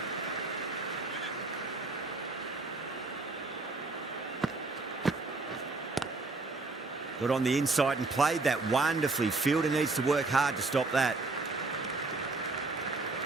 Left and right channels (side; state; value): left; quieter; 3.5 dB